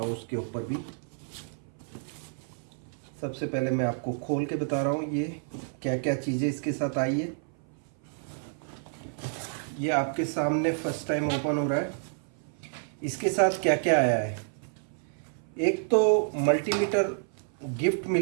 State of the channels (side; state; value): left; silent; 57 dB below the other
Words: हूँ, उसके ऊपर भी। सबसे पहले मैं आपको खोल के बता रहा हूँ ये क्या क्या चीज़ें इसके साथ आई है। ये आपके सामने फर्स्ट टाइम ओपन हो रहा है। इसके साथ क्या क्या आया है, एक तो मल्टीमीटर गिफ्ट